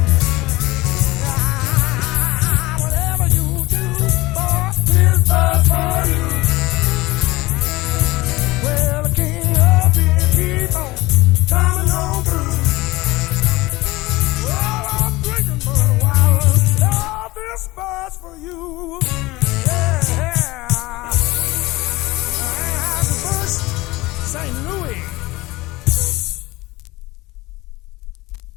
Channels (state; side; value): quieter; right; 20.4 dB